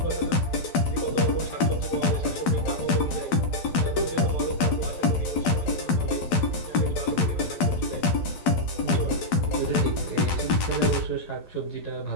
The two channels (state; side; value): late; right; 12 ms